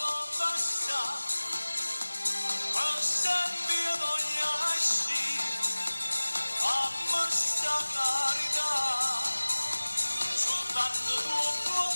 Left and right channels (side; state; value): both; inverted; correlation -1.00